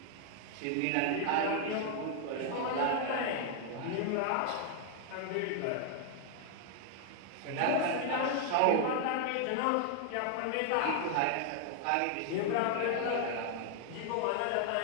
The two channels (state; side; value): different; both; correlation 0.00